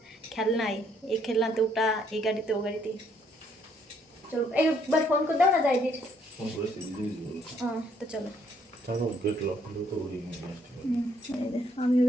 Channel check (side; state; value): both; normal; correlation 0.67